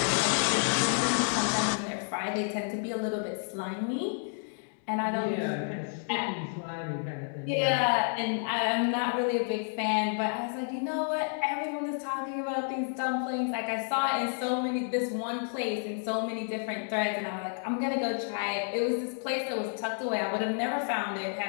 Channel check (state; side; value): silent; right; 58 dB below the other